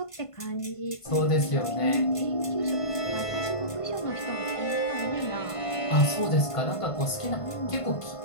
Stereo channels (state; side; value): late; right; 1.5 ms